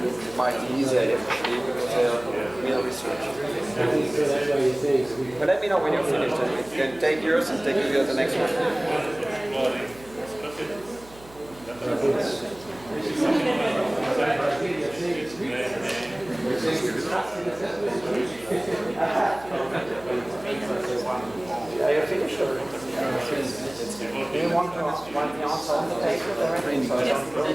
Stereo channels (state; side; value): noise; right; hum, 22 dB below the sound